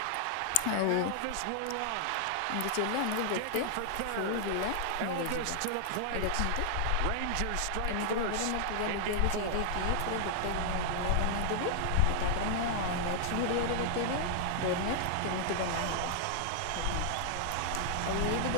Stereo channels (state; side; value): different; both; correlation 0.00